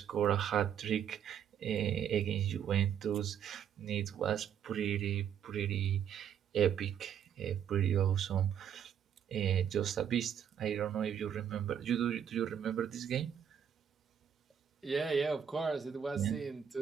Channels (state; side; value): quieter; left; 8.7 dB